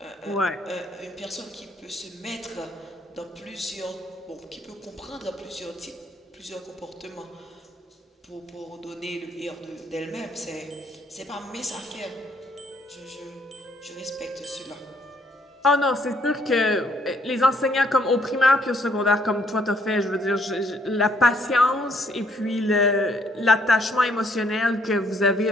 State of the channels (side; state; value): both; normal; correlation 0.67